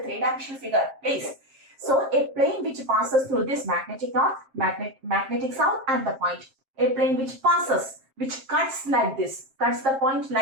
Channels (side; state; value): left; late; 7.5 ms